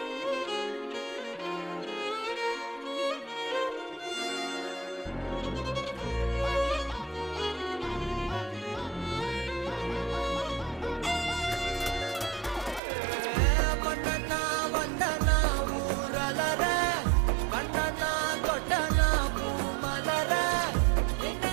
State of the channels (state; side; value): drops out; left; at 12.8 s